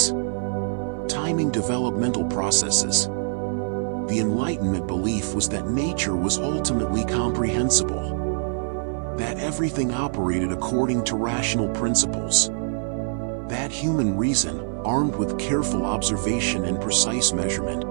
timing developmental processes. The Enlightenment belief was that nature was ultimately comprehensible, that everything operated according to rational principles, that human reason, armed with careful observation and precise measurement,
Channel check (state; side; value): silent; left; digital silence